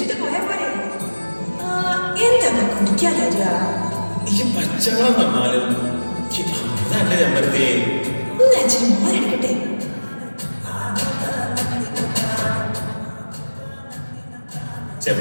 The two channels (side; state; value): both; inverted; correlation -1.00